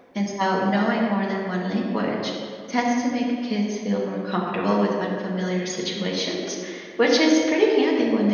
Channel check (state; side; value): identical; both; correlation 1.00